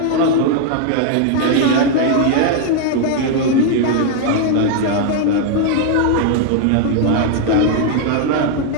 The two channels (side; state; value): both; different; correlation 0.00